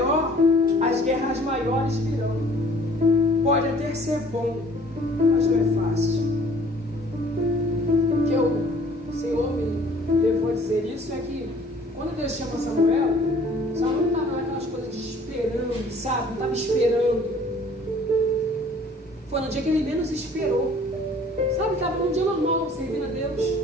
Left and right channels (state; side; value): normal; both; correlation 0.54